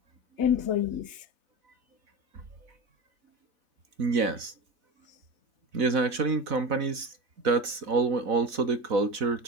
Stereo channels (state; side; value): late; left; 4.0 ms